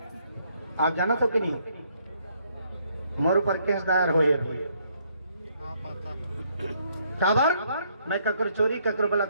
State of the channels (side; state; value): both; inverted; correlation -0.69